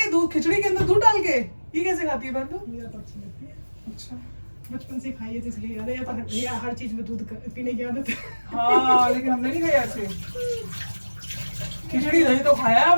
दूध खिचड़ी के अंदर दूध डाल के, ये कैसे खाती है बंदू? मुझे तो अच्छी लगती है। अच्छा, बचपन से खाई है तो इसलिए याद है, या हर चीज में दूध पीने की आदत है। हाँ लेकिन हमने नहीं खाया ऐसे। खिचड़ी दही तो खाया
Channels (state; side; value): inverted; both; correlation -1.00